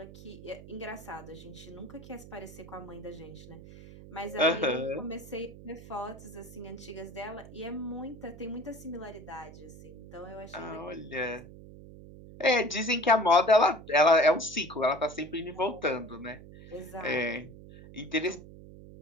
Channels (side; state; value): right; noise; hum, 16 dB below the sound